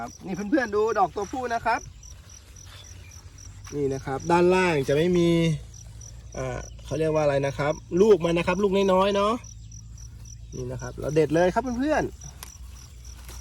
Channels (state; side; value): identical; both; correlation 1.00